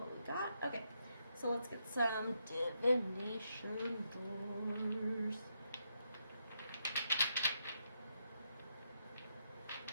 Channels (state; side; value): inverted; both; correlation -0.80